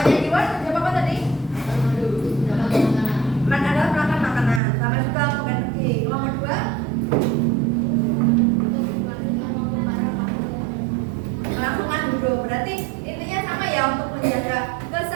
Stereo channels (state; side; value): drops out; left; at 4.6 s